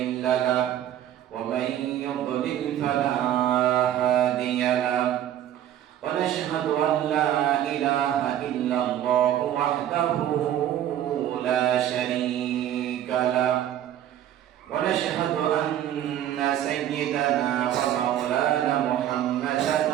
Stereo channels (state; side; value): quieter; left; 11.4 dB